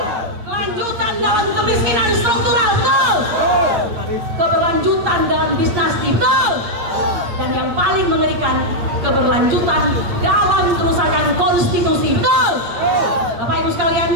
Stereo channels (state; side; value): late; left; 8.6 ms